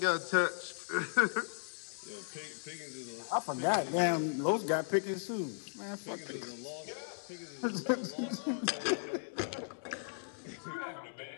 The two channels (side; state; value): right; silent; digital silence